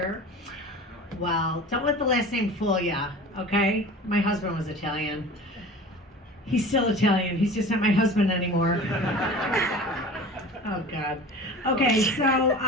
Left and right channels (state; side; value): normal; both; correlation 0.38